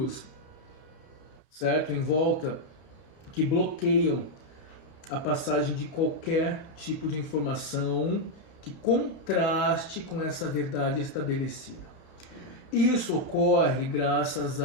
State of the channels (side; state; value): right; late; 31 ms